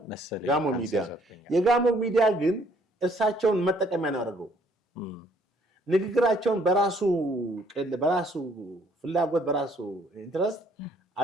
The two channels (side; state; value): both; normal; correlation 0.63